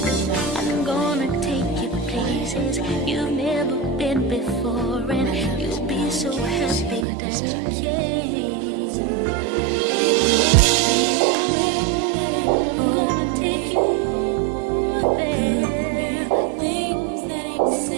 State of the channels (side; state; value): left; drops out; at 7.1 s